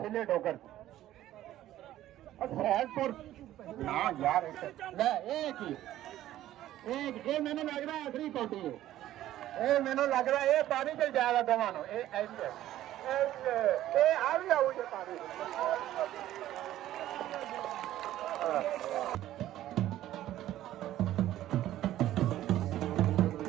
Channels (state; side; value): quieter; left; 13.6 dB